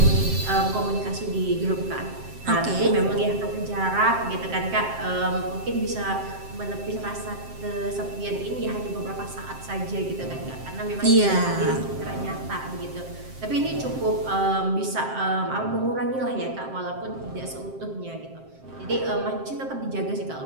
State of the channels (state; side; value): late; left; 7.6 ms